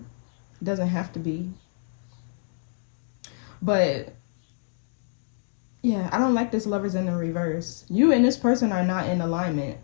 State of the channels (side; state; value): right; silent; digital silence